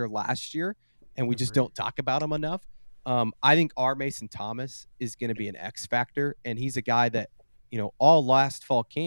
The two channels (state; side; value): inverted; both; correlation -1.00